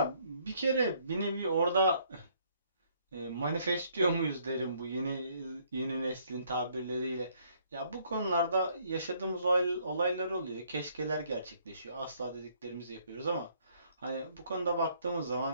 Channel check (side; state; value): both; inverted; correlation -0.66